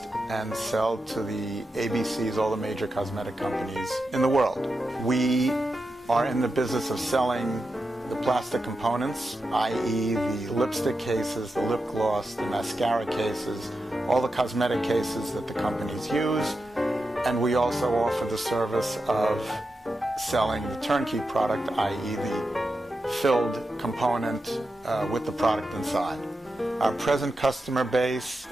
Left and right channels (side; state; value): both; normal; correlation 0.89